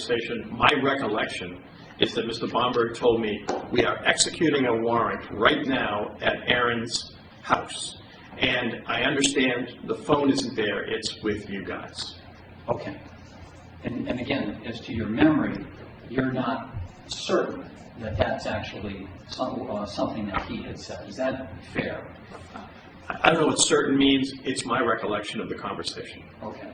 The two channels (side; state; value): both; identical; correlation 1.00